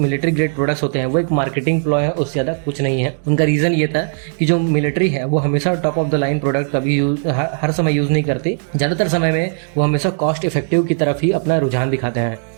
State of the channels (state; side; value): silent; left; 68 dB below the other